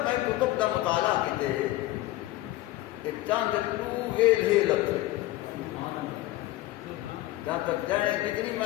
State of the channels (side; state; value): right; quieter; 16.8 dB